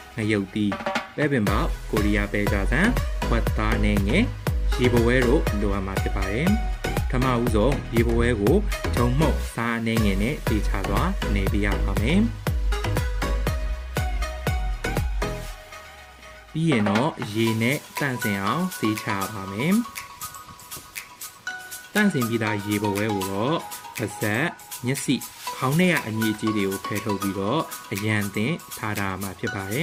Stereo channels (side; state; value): both; identical; correlation 1.00